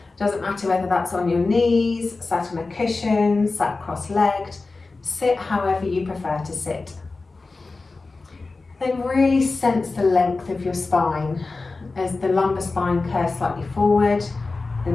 Doesn't matter whether that's on your knees, sat on a cushion, sat cross-legged. Sit however you prefer to sit. Then really sense the length of your spine as the lumbar spine curves slightly forward, the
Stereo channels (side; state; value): right; quieter; 3.7 dB